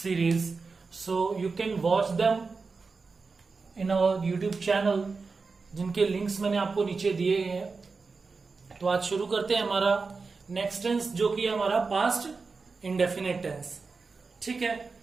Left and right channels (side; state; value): left; quieter; 4.4 dB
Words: so you can watch them in our YouTube channel, जिनके links मैंने आपको नीचे दिए हैं. तो आज शुरू करते हैं हमारा नेक्स्ट टेंस, जो कि हमारा पास्ट इंडेफिनिट टेंस. ठीक है.